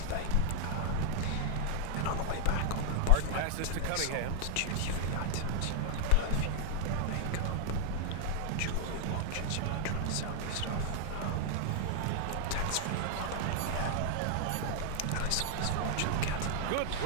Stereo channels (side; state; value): both; different; correlation 0.00